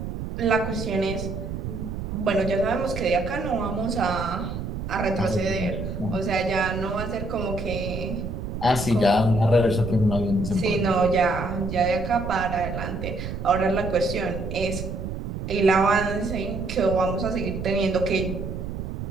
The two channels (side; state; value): right; noise; rumble, 6 dB below the sound